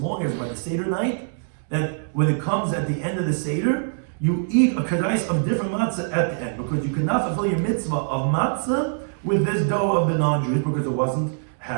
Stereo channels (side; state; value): left; silent; digital silence